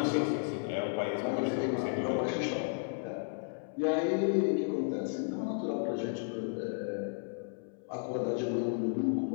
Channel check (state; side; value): silent; right; 56 dB below the other